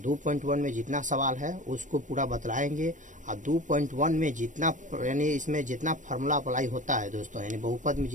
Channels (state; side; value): late; left; 0.37 ms